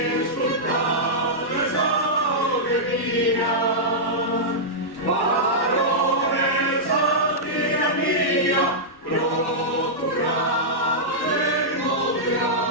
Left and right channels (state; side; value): late; right; 1.1 ms